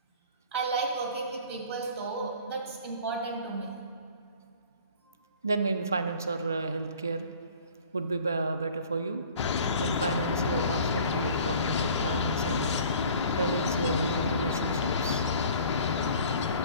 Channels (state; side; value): inverted; both; correlation -0.48